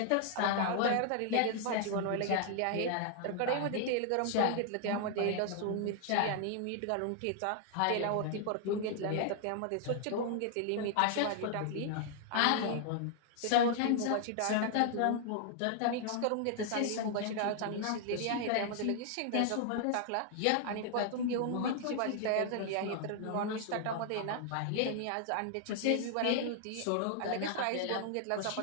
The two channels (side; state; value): both; different; correlation 0.00